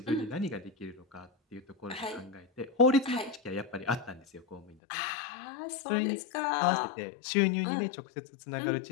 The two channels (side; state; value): right; drops out; at 4.8 s